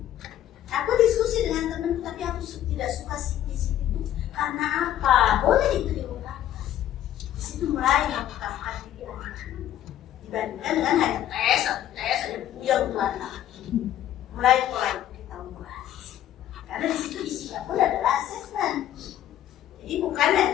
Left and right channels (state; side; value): quieter; right; 11.9 dB